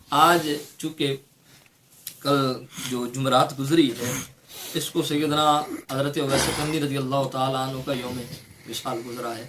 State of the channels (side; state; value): both; identical; correlation 1.00